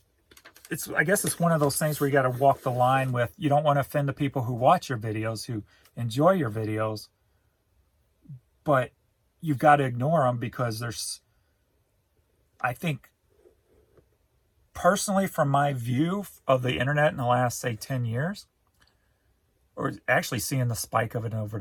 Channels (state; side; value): identical; both; correlation 1.00